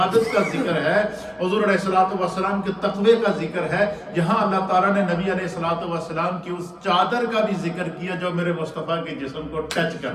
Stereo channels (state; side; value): identical; both; correlation 1.00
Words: کا ذکر ہے، حضور علیہ الصلوۃ والسلام کے تقوی کا ذکر ہے، یہاں اللہ تعالیٰ نے نبی علیہ الصلوۃ والسلام کی اس چادر کا بھی ذکر کیا جو میرے مصطفیٰ کے جسم کو ٹچ